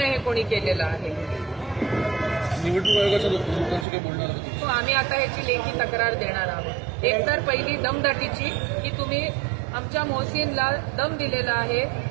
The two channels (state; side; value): drops out; left; at 3.9 s